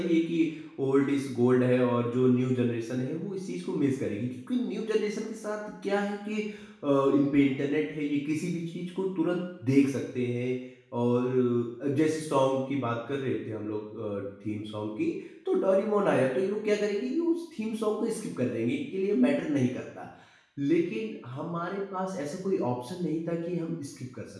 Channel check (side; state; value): both; identical; correlation 1.00